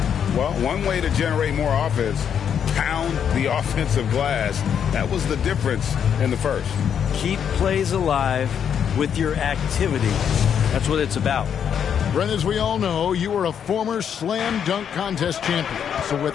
Well, one way to generate more offense, pound the offensive glass. That was the difference in the first. Keep plays alive with your activity. That's what it's about. Brent, as we all know, you were a former slam dunk contest champion. So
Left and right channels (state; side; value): quieter; right; 8.2 dB